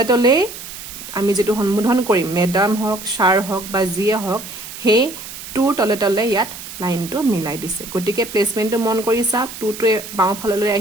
আমি যেটো সম্বোধন কৰিম মেডাম হওক ছাৰ হওক বা যিয়ে হওক হে টুৰ তলে ইয়াত লাইনটো মিলাই দিছে গতিকে প্লেসমেন্টটো মন কৰিছা টুটোৱে বাওঁফাললৈ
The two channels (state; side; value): noise; right; hiss, 12 dB below the sound